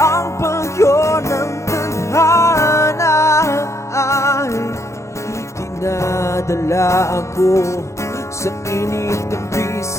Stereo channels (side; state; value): right; late; 0.14 ms